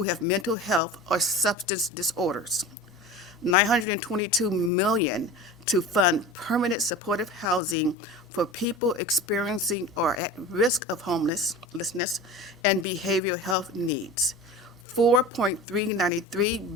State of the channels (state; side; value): normal; both; correlation 0.34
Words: have mental health or substance disorders, $922 million to fund permanent supportive housing for people experiencing or at risk of homelessness and behavioral health needs,